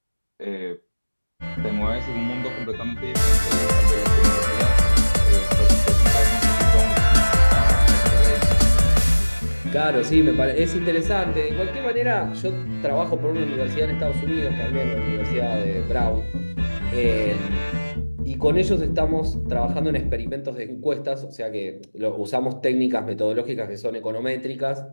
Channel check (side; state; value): both; inverted; correlation -1.00